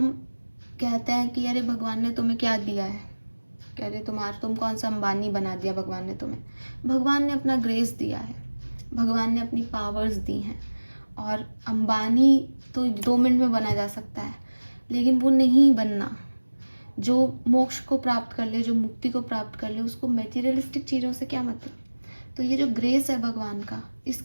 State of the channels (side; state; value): both; inverted; correlation -1.00